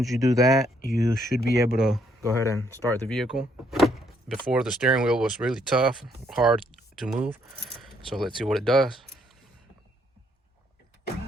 you do that, you should be able to go ahead and start the vehicle. Before, the steering wheel was really tough, hard to move. So let's see what it does.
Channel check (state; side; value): normal; both; correlation 0.70